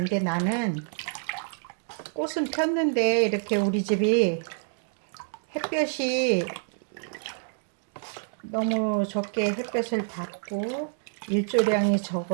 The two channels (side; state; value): left; silent; 60 dB below the other